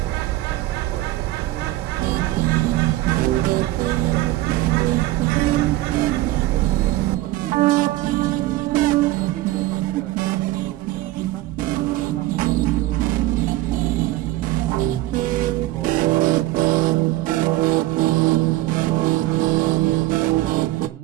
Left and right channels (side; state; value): left; quieter; 16.9 dB